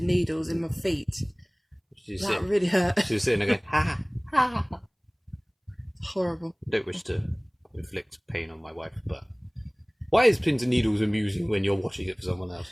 needles in my feet. That really hurt. She was sitting there going, ha, ha, ha. Horrible. I don't wish to inflict pain on my wife, but... Why is pins and needles amusing when you're watching it for someone else?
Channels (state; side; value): identical; both; correlation 1.00